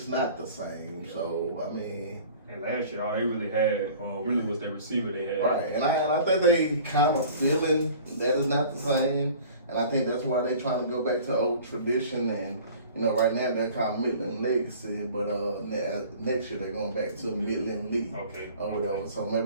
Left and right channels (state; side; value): inverted; both; correlation -0.46